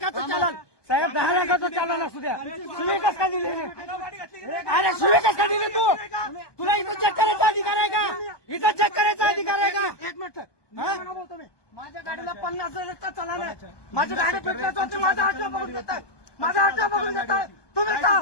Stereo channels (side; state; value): right; late; 1.2 ms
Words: चालन साहेब 10 लाखाचं चालन असू द्या शिवे कस का दिले अरे शिवे कस का दिले तू तुला इथं चेक करायचा अधिकार आहे का इथं चेक करायचा अधिकार आहे का 1 मिनिट माझ्या गाडीला 50,000चा चालन आहे माझी गाडी पेटल्याचं होती माझा हात बघून घेतात माझा हात बघून घेतात तुम्ही